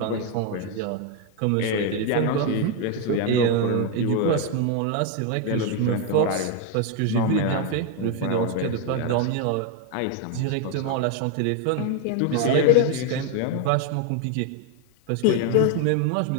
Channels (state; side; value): different; both; correlation 0.01